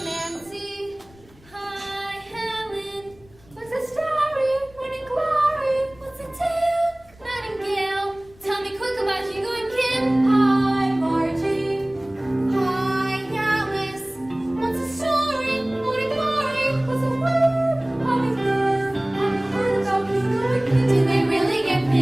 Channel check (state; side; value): noise; left; rumble, 26 dB below the sound